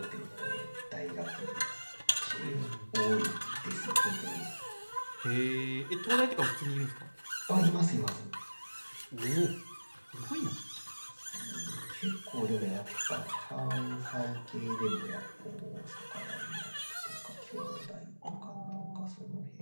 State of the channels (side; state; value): both; inverted; correlation -1.00